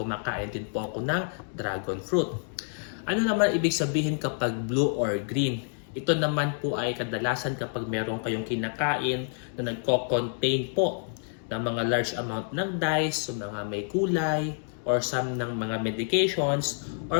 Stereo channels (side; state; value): right; silent; 59 dB below the other